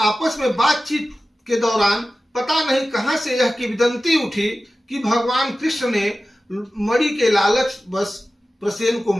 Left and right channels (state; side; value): normal; both; correlation 0.95